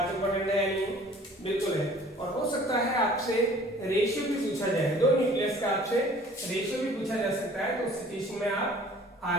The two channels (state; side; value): normal; both; correlation 0.51